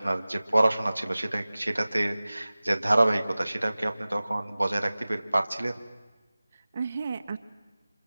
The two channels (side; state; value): both; inverted; correlation -0.98